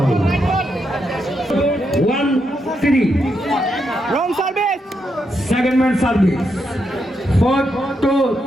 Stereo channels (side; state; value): both; normal; correlation 0.82